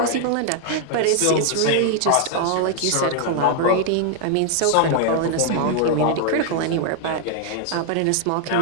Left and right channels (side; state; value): both; different; correlation 0.00